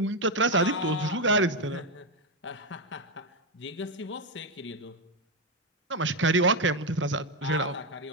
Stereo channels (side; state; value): both; normal; correlation 0.07